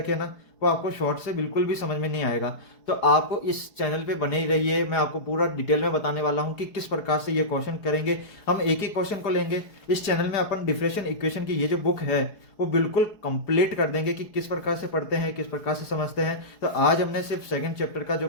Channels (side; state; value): right; late; 4.8 ms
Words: हैं ना वो आपको शॉर्ट से बिल्कुल भी समझ में नहीं आएगा। तो आपको इस चैनल पे बने ही रहिए, मैं आपको पूरा डिटेल में बताने वाला हूँ कि किस प्रकार से ये क्वेश्चन करेंगे। हम एक ही क्वेश्चन को लेंगे। इस चैनल में अपन डिफरेंशियल इक्वेशन की ये जो बुक है वो बिल्कुल कंप्लीट कर देंगे कि किस प्रकार से पढ़ते हैं, किस प्रकार से समझते हैं। तो आज हमने सिर्फ सेकंड चैप्टर का जो